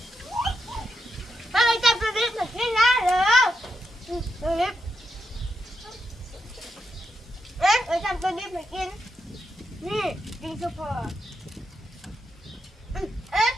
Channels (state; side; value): normal; both; correlation 0.84